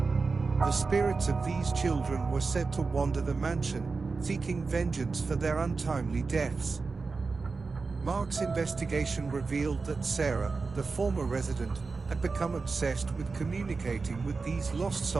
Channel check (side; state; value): left; quieter; 4.3 dB